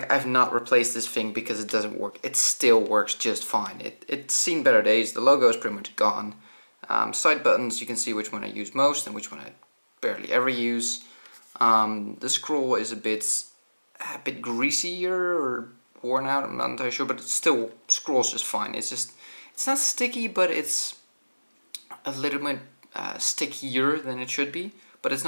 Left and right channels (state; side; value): inverted; both; correlation -1.00